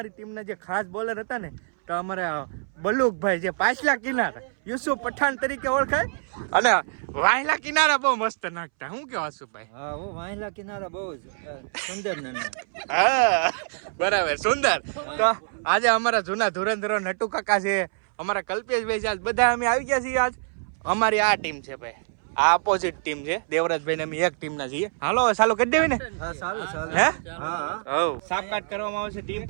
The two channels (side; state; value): left; silent; 61 dB below the other